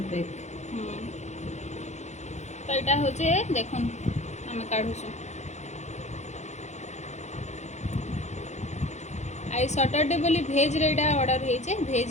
पैक। तो यहाँ हूँ देखुन आम काढ़ुसु। आई सैटरडे बोली भेज रे ऑर्डर होइचे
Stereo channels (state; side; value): late; right; 0.33 ms